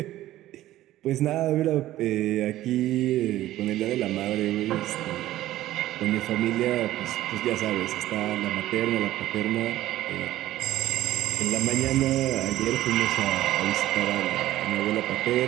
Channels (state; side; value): quieter; left; 14.7 dB